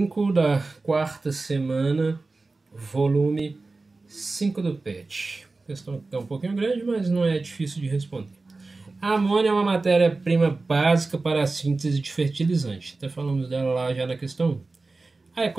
da quarta semana, volume 5 do PET. Questão que é um pouquinho grande, mas não é difícil de responder. A amônia é uma matéria-prima básica para a síntese de fertilizante. Até falamos dela lá já na questão 1. A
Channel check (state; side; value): quieter; left; 3.5 dB